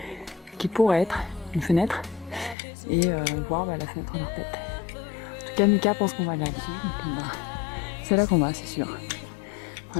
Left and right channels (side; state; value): right; drops out; at 2.6 s